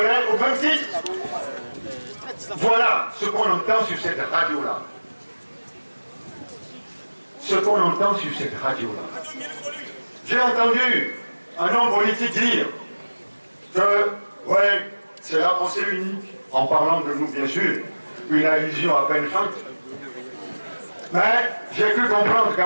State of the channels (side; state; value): both; inverted; correlation -1.00